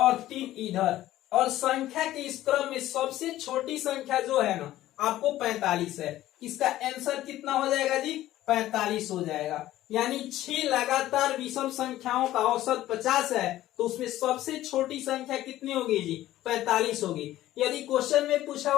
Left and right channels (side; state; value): right; quieter; 14.5 dB